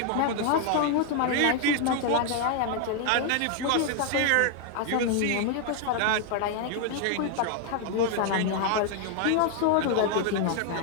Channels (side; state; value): both; different; correlation 0.00